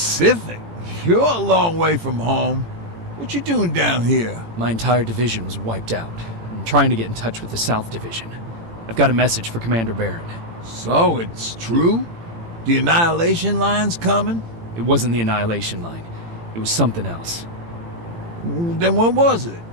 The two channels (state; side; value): late; left; 18 ms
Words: You're a long way from home. What you doing down here? My entire division was wiped out. I'm trying to get in touch with the South Division. I've got a message for Commander Barron. So, it's true? The Annihilation Line's coming? It wasn't the Annihilation Line. It was something else. Then what was it?